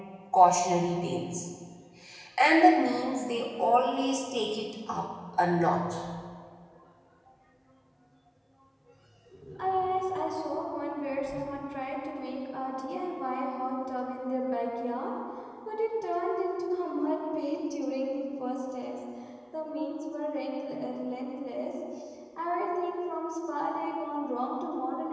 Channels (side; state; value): both; identical; correlation 1.00